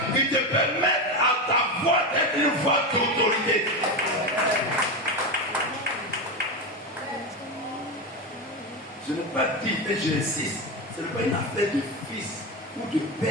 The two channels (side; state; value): both; normal; correlation 0.16